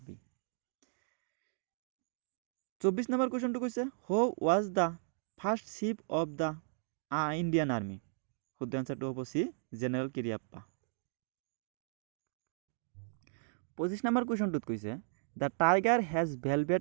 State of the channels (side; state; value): left; silent; digital silence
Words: 24 নম্বৰ কুৱেশ্যনটো কৈছে who was the first chief of the Indian army. শুদ্ধ এনচাৰটো হ'ব চি, জেনেৰেল কিৰিয়াপ্পা। 25 নম্বৰ কুৱেশ্যনটোত কৈছে the tiger has